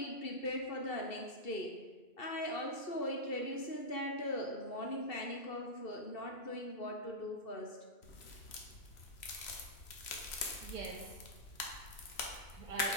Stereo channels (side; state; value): right; late; 3.0 ms